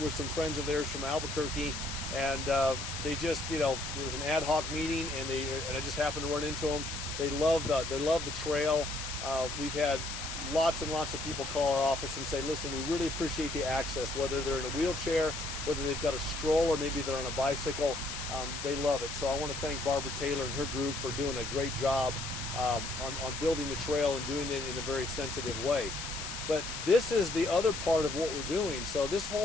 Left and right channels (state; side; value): noise; left; hiss, 6 dB below the sound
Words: some friends of theirs from Albuquerque, and they just, it was an ad hoc meeting, and I just happened to run into them. They love the trail. We've had lots and lots of people call our office and say, listen, we really appreciate the access, whether they're in a wheelchair, whether they've got a stroller, maybe they're on a bicycle. They love it. So I want to thank Barbara Taylor and her group for doing a great job on building the trail and doing it in a very sensitive way. But this is the other part of what we're doing. So this